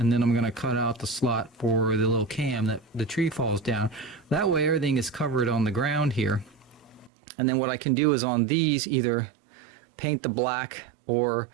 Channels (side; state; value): left; drops out; at 7.1 s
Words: then I'm going to cut out the slot for the little cam that the tree falls down. That way everything is covered on the ground here. And then what I can do is on these either paint the black, or